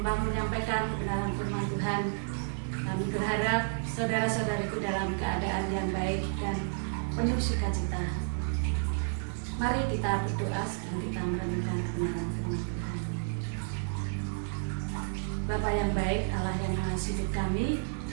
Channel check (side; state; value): left; silent; 57 dB below the other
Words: kebenaran firman Tuhan. Kami berharap saudara-saudariku dalam keadaan yang baik dan penuh sukacita. Mari kita berdoa sebelum kita merenungkan kebenaran firman Tuhan. Bapa yang baik, Allah yang mengasihi hidup